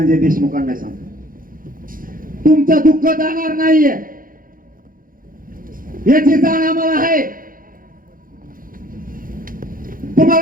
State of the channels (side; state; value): left; late; 0.41 ms